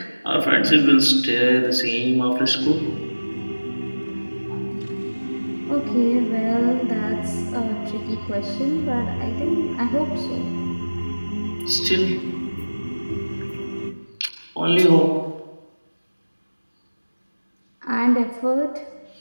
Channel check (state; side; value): inverted; both; correlation -1.00